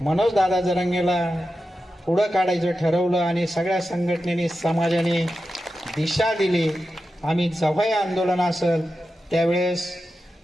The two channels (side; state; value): both; normal; correlation 0.91